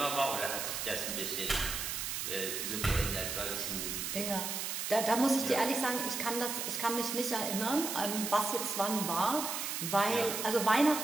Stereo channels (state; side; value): noise; right; hiss, 3 dB below the sound